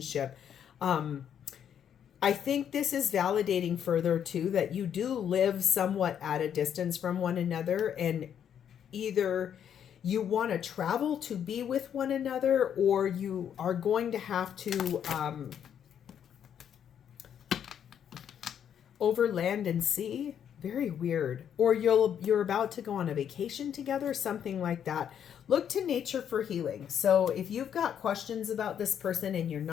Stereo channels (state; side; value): quieter; right; 8.9 dB